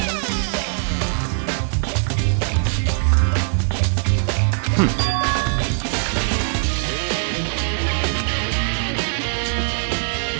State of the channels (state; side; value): silent; left; 65 dB below the other